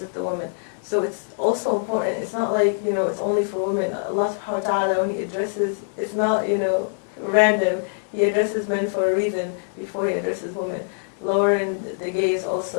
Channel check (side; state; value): right; silent; digital silence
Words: the women. So it's also important. It's not like, you know, it's only for women. Allah subhanahu wa ta'ala, when He addresses, it's not, you know, random. He addresses men for a reason before He addresses women. Lowering the gaze